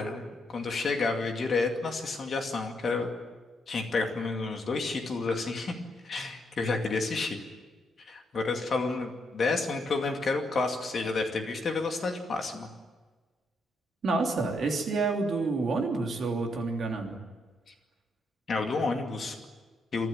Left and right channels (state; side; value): normal; both; correlation 0.77